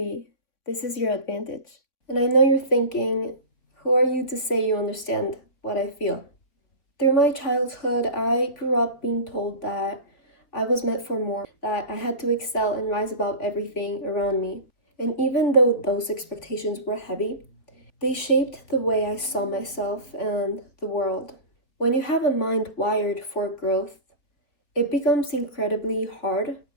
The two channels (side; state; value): right; late; 3.8 ms